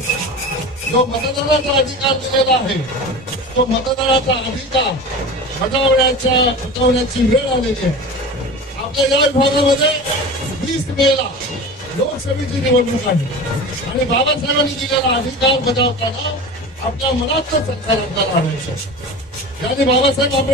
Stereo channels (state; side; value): normal; both; correlation 0.33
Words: जो मतदानाचा अधिकार दिलेला आहे तो मतदानाचा अधिकार बजावण्याची वेळ आलेली आहे। आपल्या या विभागामध्ये 20 मेला लोकसभेची निवडणूक आहे आणि बाबासाहेबांनी दिलेला अधिकार बजावताना आपल्या मनातलं सरकार आपल्याला आणायचं। यांनी बाबासाहेब